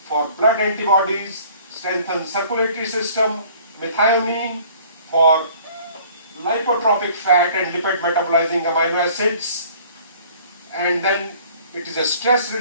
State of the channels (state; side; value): inverted; both; correlation -0.53